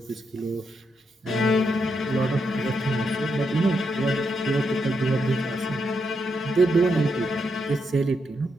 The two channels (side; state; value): both; normal; correlation 0.81